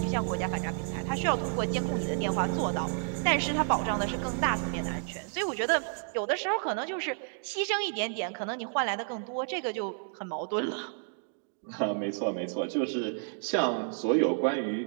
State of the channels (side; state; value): left; silent; 57 dB below the other